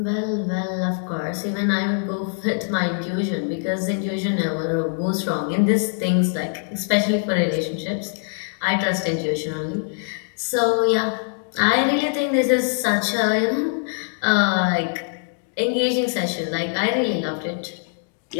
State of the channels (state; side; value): silent; right; 63 dB below the other